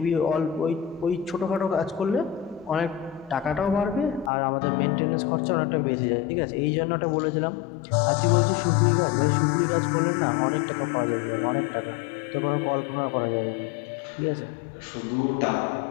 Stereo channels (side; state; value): right; drops out; at 4.3 s